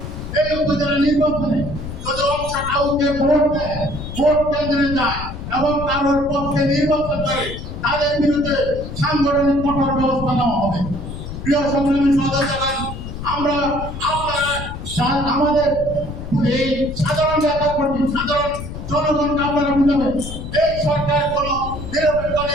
এই উপজেলা নির্বাচনে যদি অংশ কাউকে ভোট দেয়, ভোট কেন্দ্রে যায় এবং কারোর পক্ষে নির্বাচন করে, তাদের বিরুদ্ধে সাংগঠনিক কঠোর ব্যবস্থা নেওয়া হবে। প্রিয় সংগ্রামী সদস্যগণ, আমরা আমাদের এই সাধারণ নেতা কর্মী, সাধারণ জনগণকে আপনারা বুঝাবেন এই সরকার কোনো নিরপেক্ষ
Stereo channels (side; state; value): left; noise; rumble, 9 dB below the sound